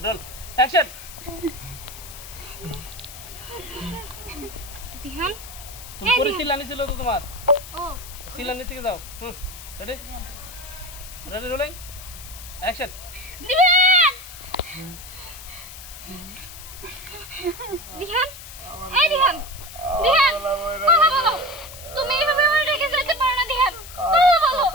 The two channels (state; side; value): noise; left; hiss, 14 dB below the sound